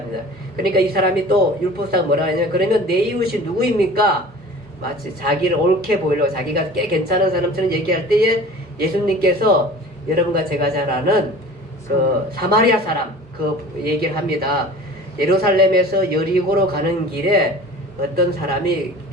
그러니까 이 사람이 또 율법사가 뭐라 하냐면 그러면 내 이웃이 누구입니까? 마치 자기를 옳게 보이려고 자기가 꽤 괜찮은 사람처럼 얘기할 때에 예수님께서 여러분과 제가 잘 아는 그 사마리아 사람 그 얘기를 합니다. 예루살렘에서 여리고로 가는 길에 어떤 사람이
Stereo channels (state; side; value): normal; both; correlation 0.41